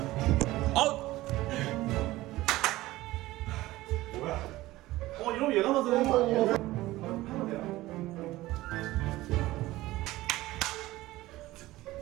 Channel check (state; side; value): quieter; left; 17.6 dB